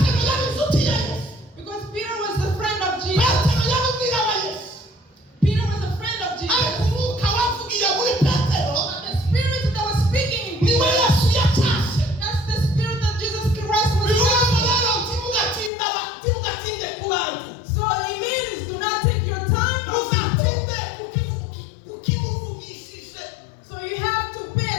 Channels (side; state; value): right; drops out; at 15.7 s